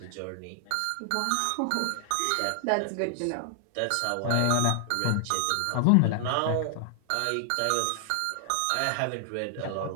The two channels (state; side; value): different; both; correlation 0.00